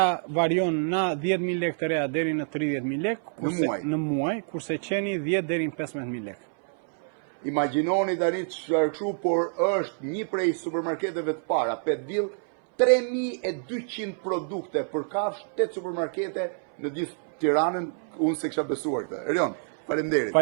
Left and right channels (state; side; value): silent; left; 60 dB below the other